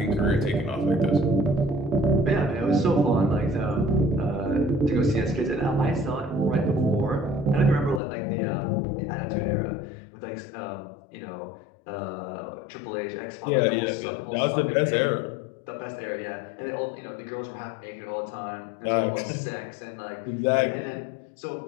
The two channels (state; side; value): drops out; right; at 8.0 s